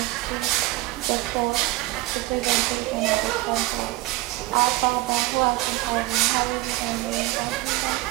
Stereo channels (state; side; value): quieter; left; 18.8 dB